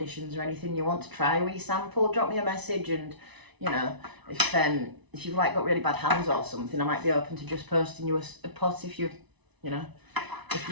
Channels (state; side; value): late; left; 1.0 ms